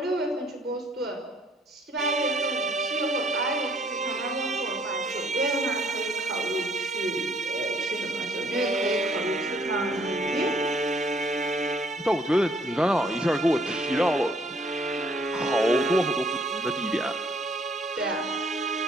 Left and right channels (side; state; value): both; normal; correlation 0.64